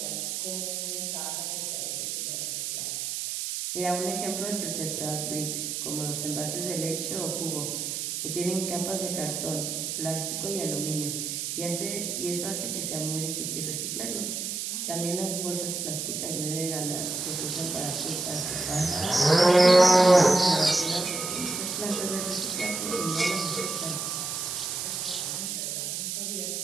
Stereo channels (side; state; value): right; noise; hiss, 3 dB below the sound